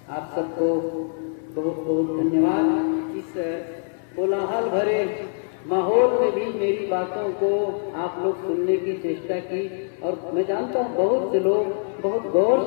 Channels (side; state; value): right; silent; 63 dB below the other